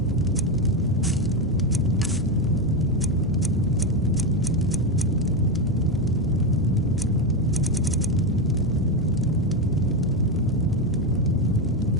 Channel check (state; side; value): normal; both; correlation 0.11